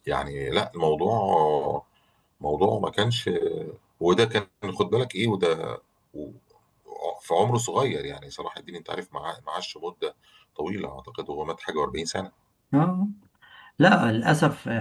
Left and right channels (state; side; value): identical; both; correlation 1.00